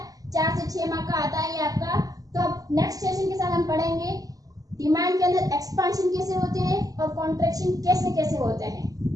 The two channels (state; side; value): late; left; 0.17 ms